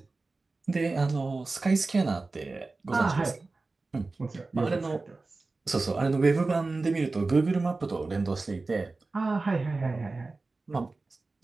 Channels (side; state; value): left; quieter; 3.6 dB